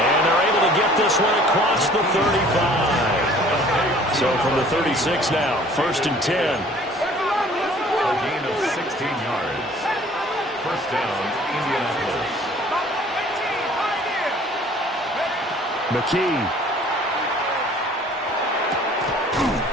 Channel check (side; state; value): both; normal; correlation 0.52